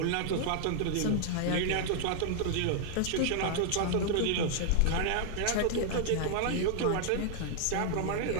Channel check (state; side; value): different; both; correlation 0.00